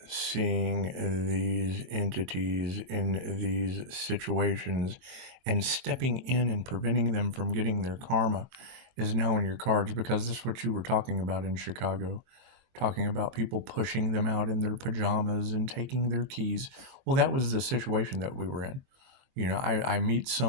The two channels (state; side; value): late; left; 22 ms